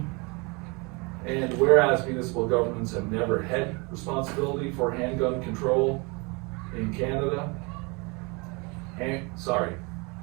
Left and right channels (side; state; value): left; quieter; 29.2 dB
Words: And whereas municipal governments have never had responsibility for handgun control in Canada, and